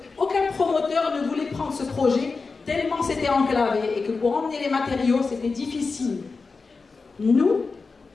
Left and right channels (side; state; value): right; quieter; 4.3 dB